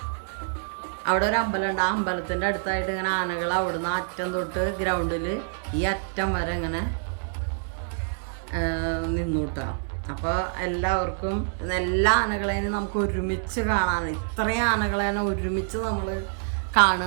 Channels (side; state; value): left; silent; digital silence